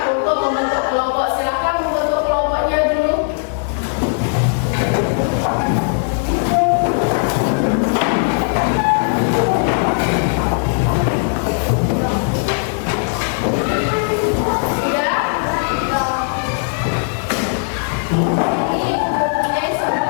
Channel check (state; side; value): silent; right; digital silence